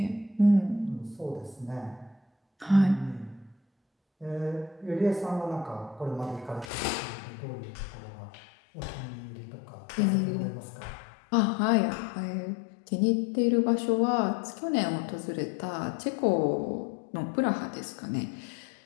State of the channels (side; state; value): right; drops out; at 6.7 s